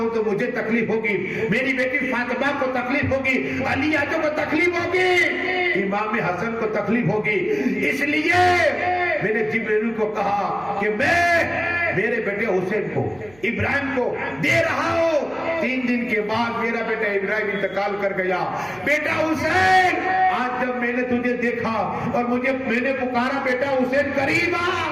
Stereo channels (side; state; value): right; noise; hum, 27 dB below the sound